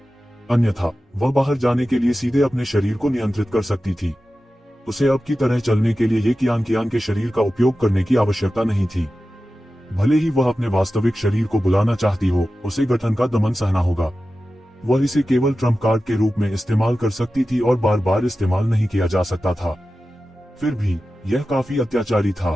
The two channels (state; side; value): normal; both; correlation 0.94